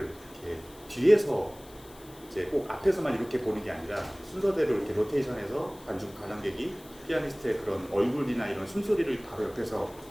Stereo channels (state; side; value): noise; left; hiss, 22 dB below the sound